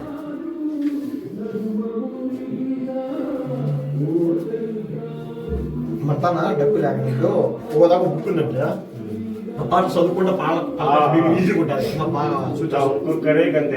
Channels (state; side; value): identical; both; correlation 1.00